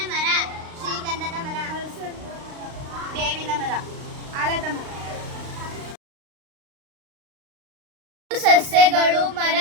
ಮರ, ಶ್ರೀಗಂಧದ ಮರ, ಬೇವಿನ ಮರ, ಆಲದ ಮರ. ಸಸ್ಯಗಳು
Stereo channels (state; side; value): late; left; 36 ms